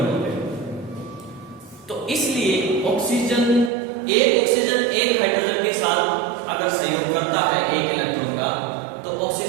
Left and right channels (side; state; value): left; drops out; at 3.7 s